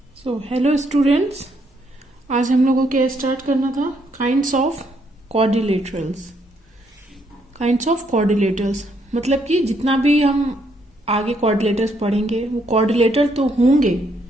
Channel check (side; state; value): both; normal; correlation 0.73